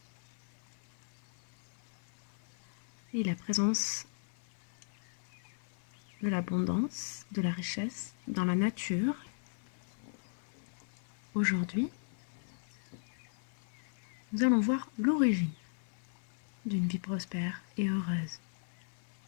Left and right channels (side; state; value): right; silent; 53 dB below the other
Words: Et la présence de l'abondance, de la richesse dans la nature. Aujourd'hui, nous allons voir l'origine d'une vie prospère et heureuse.